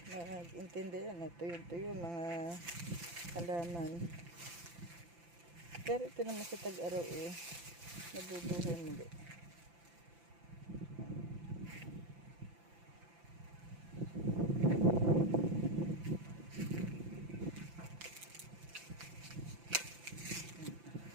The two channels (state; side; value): late; left; 5.9 ms